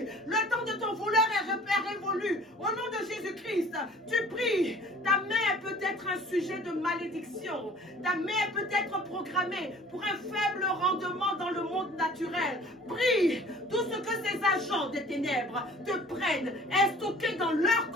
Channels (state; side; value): normal; both; correlation 0.49